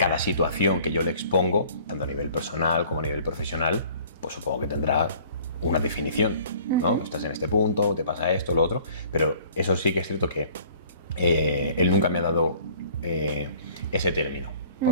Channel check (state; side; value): inverted; both; correlation -0.53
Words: situación que yo le expongo, tanto a nivel personal como a nivel profesional, pues supongo que tendrá una definición, ¿no? Estás en este punto, te pasa esto, lo otro, pero eso sí que es cierto que él nunca me ha dado ese término,